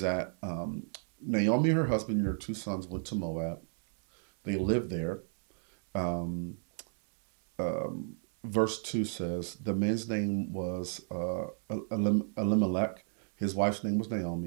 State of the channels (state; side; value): silent; left; digital silence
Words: that Naomi, her husband, and her 2 sons went to Moab. They lived there. Verse 2 says, the man's name was Elimelech, his wife's name was